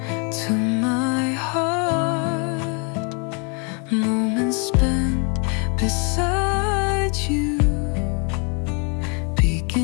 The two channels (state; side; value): quieter; right; 35.2 dB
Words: to my heart. Moments spent beside you